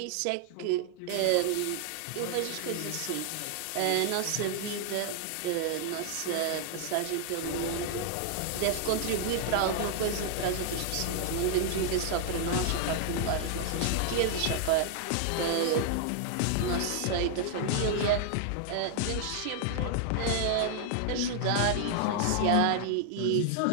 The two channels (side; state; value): both; different; correlation 0.00